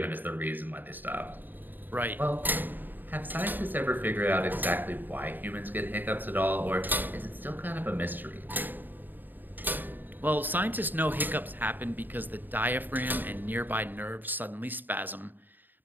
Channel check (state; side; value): late; left; 0.090 ms